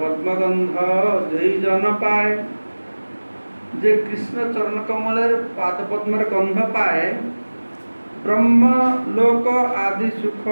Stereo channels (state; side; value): inverted; both; correlation -1.00